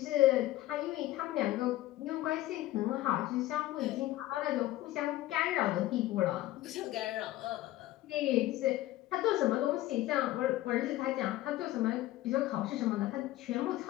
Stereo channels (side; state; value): right; quieter; 15.8 dB